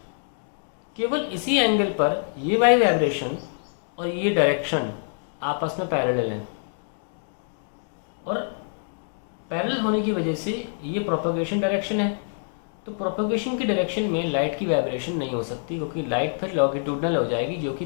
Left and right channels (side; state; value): right; silent; digital silence